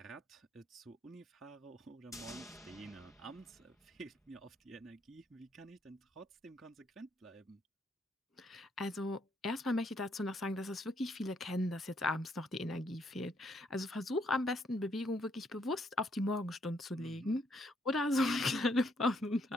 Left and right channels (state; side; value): normal; both; correlation 0.72